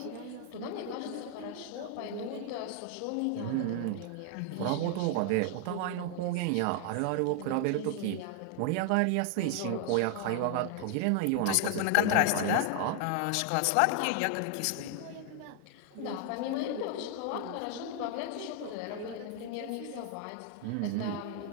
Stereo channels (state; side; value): different; both; correlation 0.00